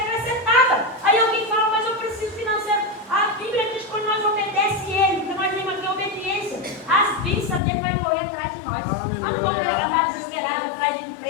Aí alguém fala, mas eu preciso financeiro. A Bíblia diz que quando nós obedecemos ele, porque nós temos aqui obediência, as bênçãos dele vai correr atrás de nós. Nós não vamos andar desesperados atrás de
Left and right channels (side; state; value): right; drops out; at 7.6 s